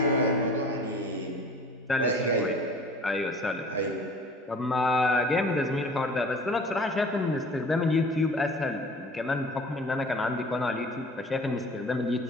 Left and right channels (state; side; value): normal; both; correlation 0.46